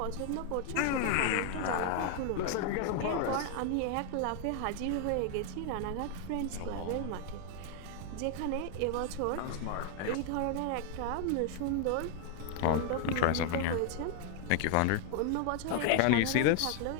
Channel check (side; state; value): both; different; correlation 0.00